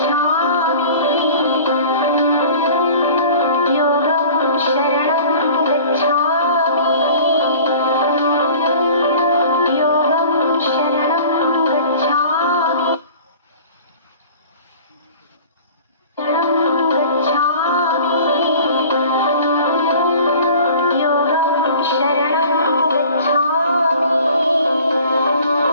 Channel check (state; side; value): inverted; both; correlation -0.44